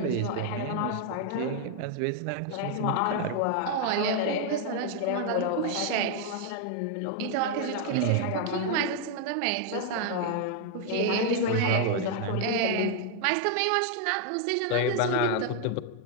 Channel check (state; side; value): different; both; correlation 0.00